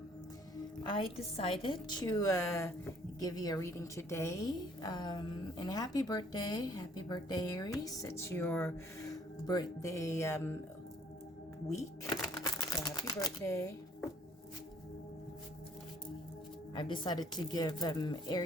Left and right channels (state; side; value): normal; both; correlation 0.61